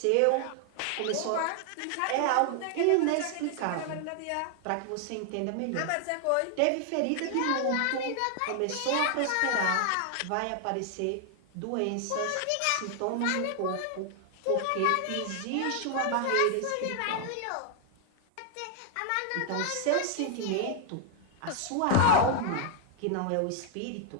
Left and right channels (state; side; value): different; both; correlation 0.00